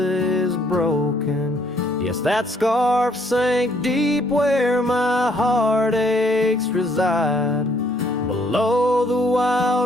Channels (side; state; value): both; normal; correlation 0.66